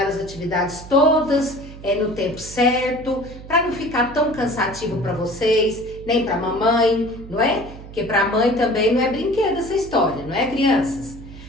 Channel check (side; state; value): right; noise; hum, 15 dB below the sound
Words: as atividades todas no tempo certo, para não ficar tão cansativo para vocês, nem para a mamãe, não é? Porque para a mãe também não é brinquedo essa história, não é, crianças?